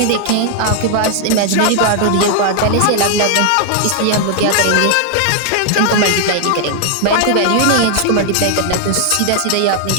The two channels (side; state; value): both; different; correlation 0.00